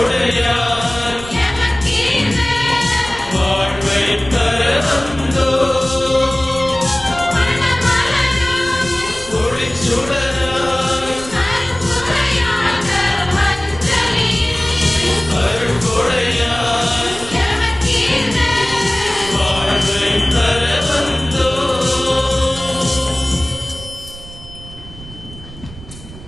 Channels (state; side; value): noise; right; rumble, 16 dB below the sound